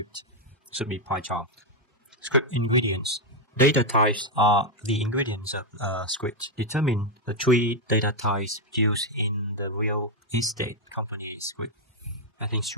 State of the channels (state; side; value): normal; both; correlation 0.02